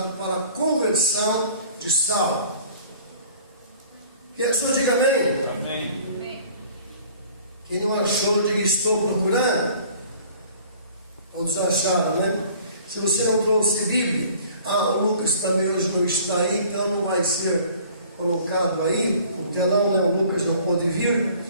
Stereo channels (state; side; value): inverted; both; correlation -0.51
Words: para a conversão de Saulo. Quem achou, diga amém. Amém. Quem não achou, diga estou procurando. Todos acharam, né? Se você não trouxe Bíblia, o Lucas também hoje não está aí, então não vai ser colocado aí, o telão, né? O Lucas não pôde vir.